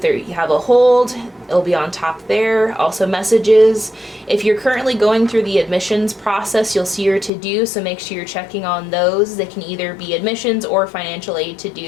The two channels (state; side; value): drops out; right; at 7.3 s